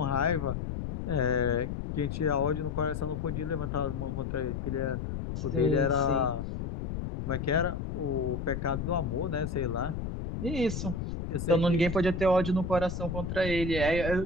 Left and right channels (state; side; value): noise; left; rumble, 4 dB below the sound